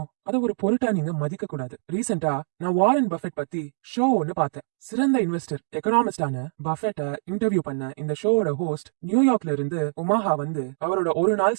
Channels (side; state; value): left; silent; digital silence